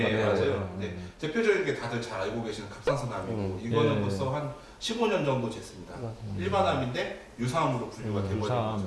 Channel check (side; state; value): both; identical; correlation 1.00